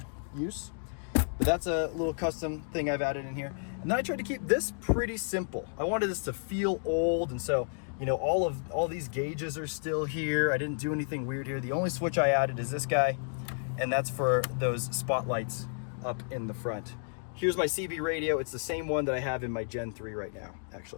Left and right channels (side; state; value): right; silent; digital silence